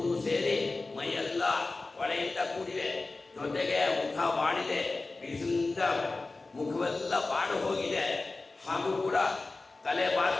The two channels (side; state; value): right; quieter; 3.4 dB